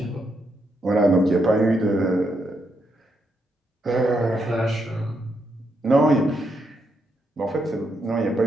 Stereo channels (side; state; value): both; normal; correlation 0.79